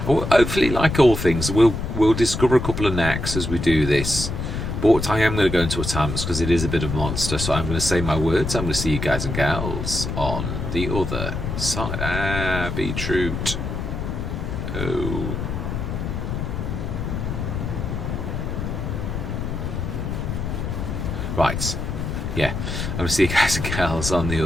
hopefully, like all things, we'll discover a couple of knacks as we do this. But I am going to go into a time-lapse because it is a bit of a monster, so I'm going to say my words. I'm going to see you guys and gals on the other side. Beetroot. Oh. Right. Yeah. I'm going to see you guys and gals on the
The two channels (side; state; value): left; noise; rumble, 3 dB below the sound